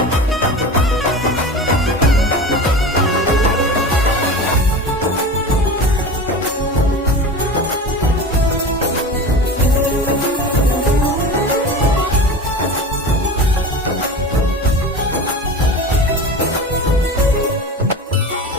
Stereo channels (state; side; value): normal; both; correlation 0.31